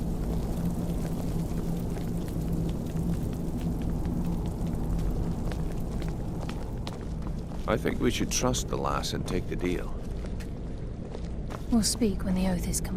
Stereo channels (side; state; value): both; identical; correlation 1.00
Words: I think we should trust the lass and take the deal. We'll speak when the oath is